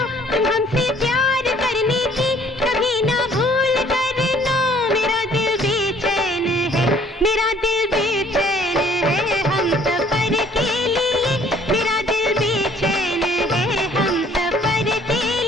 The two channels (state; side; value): normal; both; correlation 0.59